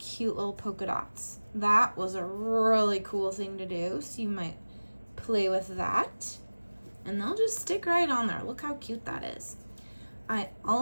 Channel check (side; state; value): both; inverted; correlation -1.00